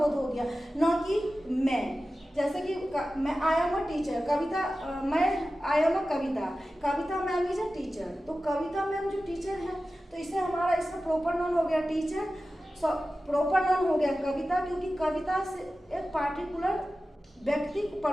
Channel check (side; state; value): both; normal; correlation 0.94